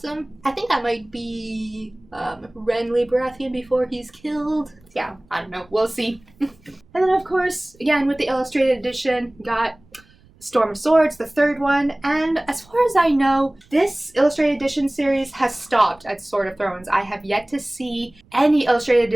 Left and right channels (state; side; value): noise; right; rumble, 29 dB below the sound